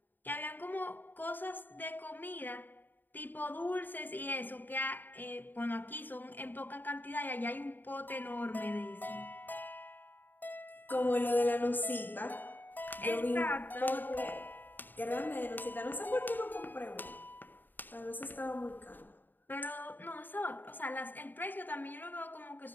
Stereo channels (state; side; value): late; right; 0.090 ms